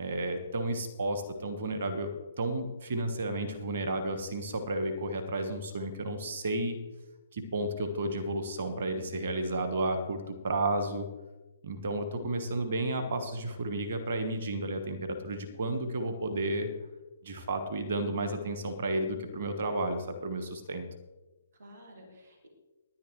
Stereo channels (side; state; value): both; inverted; correlation -0.65